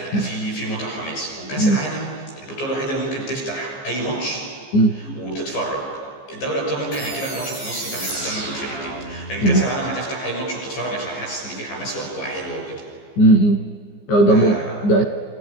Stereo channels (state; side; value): late; right; 15 ms